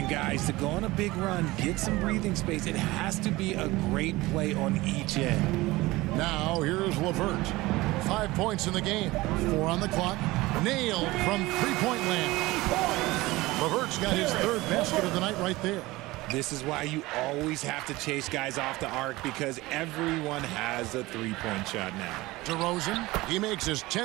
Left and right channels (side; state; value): left; quieter; 19.9 dB